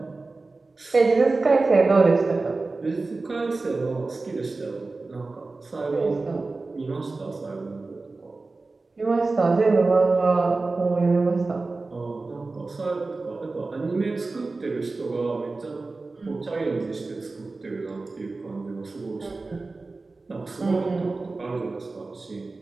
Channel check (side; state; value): left; quieter; 3.6 dB